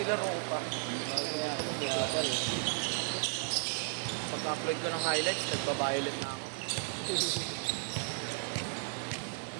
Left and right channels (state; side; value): silent; left; digital silence